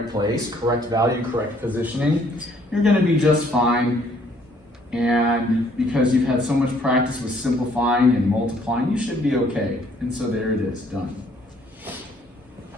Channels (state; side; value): normal; both; correlation 0.63